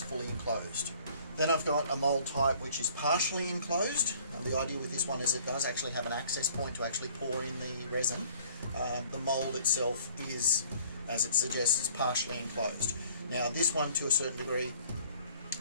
fully enclosed. Then I've got a mould type which is partially enclosed. And the idea with this one is it does actually have an access point to actually pour in the resin. The mould itself is, as it suggests, partially enclosed. Now this one, to a certain degree,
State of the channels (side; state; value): both; inverted; correlation -0.55